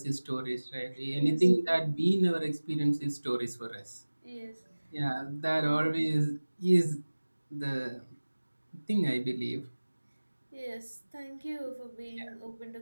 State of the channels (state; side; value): inverted; both; correlation -1.00